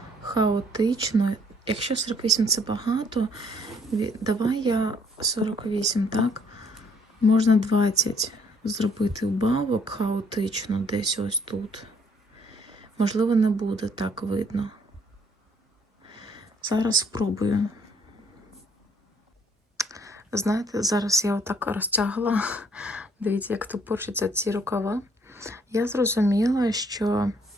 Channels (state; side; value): normal; both; correlation 0.64